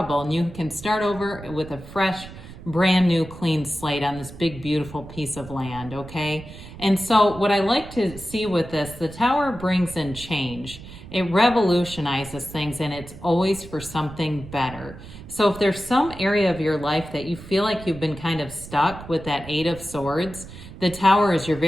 and you can start over with a fresh, brand new, clean slate on this big, beautiful piece of land, okay? And so what I like to see with this, the Tower brings in change. It revolutionizes things, and it's always for something better. So if there's some area of your life that you feel like you've been kind of stuck with that Eight of Swords, the Tower is your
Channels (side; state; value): right; noise; rumble, 15 dB below the sound